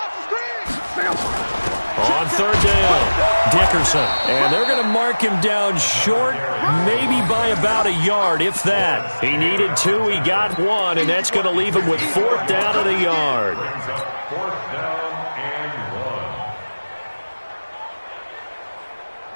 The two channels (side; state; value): both; inverted; correlation -1.00